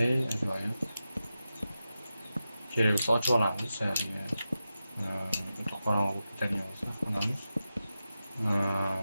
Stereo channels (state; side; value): inverted; both; correlation -0.91